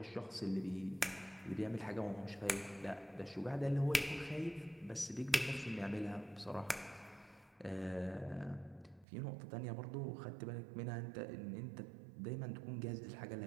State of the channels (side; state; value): left; drops out; at 9.1 s